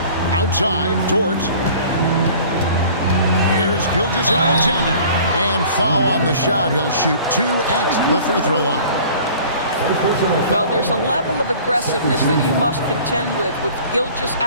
Outside, Dort. Here's Gilgeous-Alexander. And foul on the shot. He'll shoot 2 at the free throw line. Well, there's a level of aggressiveness that you must contend with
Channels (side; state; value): both; inverted; correlation -0.47